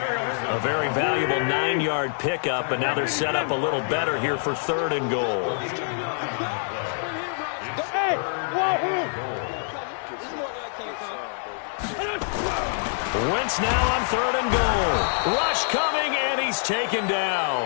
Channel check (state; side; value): silent; right; digital silence